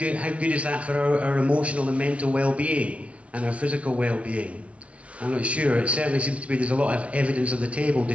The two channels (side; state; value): left; late; 0.063 ms